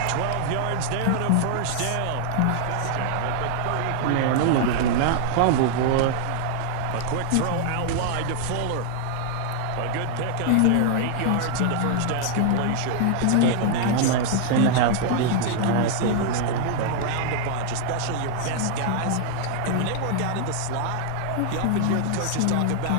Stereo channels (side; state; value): both; different; correlation 0.00